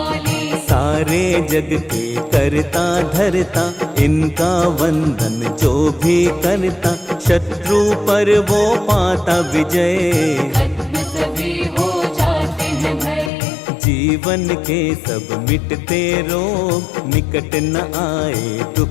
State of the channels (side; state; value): right; drops out; at 13.3 s